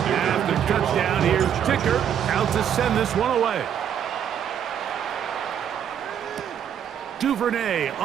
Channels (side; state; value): left; quieter; 9.0 dB